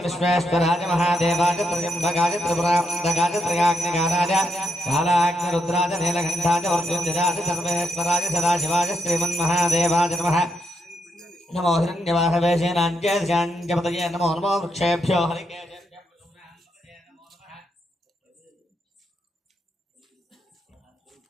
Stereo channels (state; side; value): normal; both; correlation 0.81